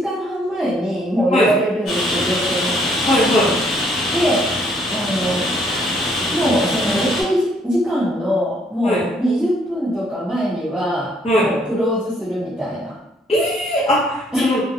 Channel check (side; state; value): both; normal; correlation 0.66